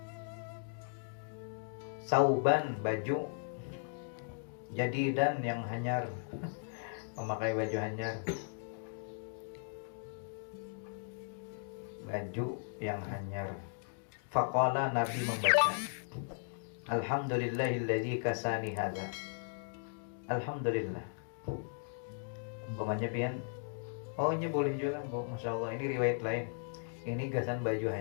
Sauban baju. Jadi dan yang hanyar. Memakai baju hanyar. Baju yang hanyar. Faqala, Nabi membaca, Alhamdulillahilladzi kasani hadza. Alhamdulillah. Umpamanya pian, oh ini boleh juga, Masya Allah, ini riwayat lain. Ini gasan baju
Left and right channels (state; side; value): silent; right; digital silence